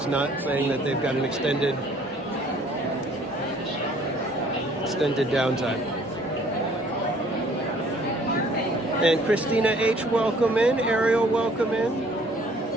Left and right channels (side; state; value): both; normal; correlation 0.57